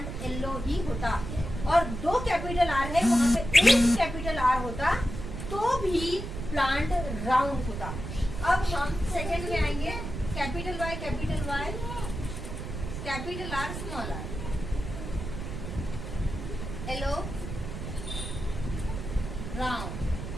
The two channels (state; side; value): noise; right; rumble, 7 dB below the sound